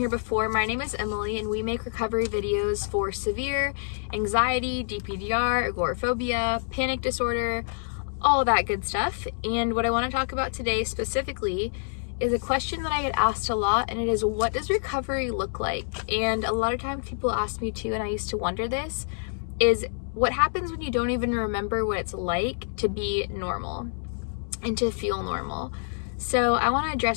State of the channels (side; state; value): right; silent; 60 dB below the other